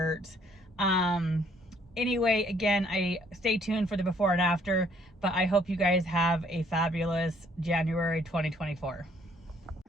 Anyway, again, I stay tuned for the before and after, but I hope you guys have a fabulous January 2024.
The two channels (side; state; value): both; normal; correlation 0.64